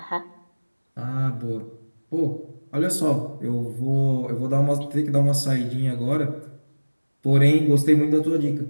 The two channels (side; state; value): both; inverted; correlation -1.00